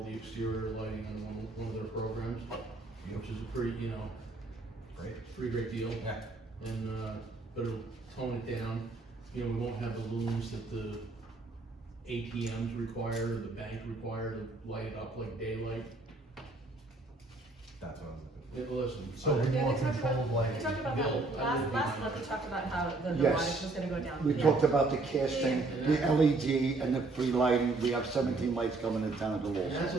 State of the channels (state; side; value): quieter; left; 3.4 dB